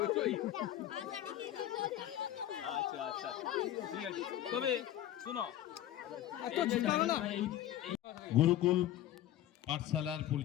দুটোই? আচ্ছা আচ্ছা ঠিক আছে। তবে শোনো, গুরুকুল পাঠশালার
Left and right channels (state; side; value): quieter; right; 12.5 dB